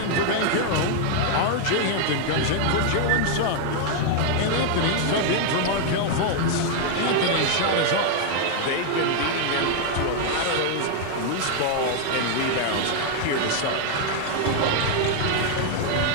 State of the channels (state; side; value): different; both; correlation 0.00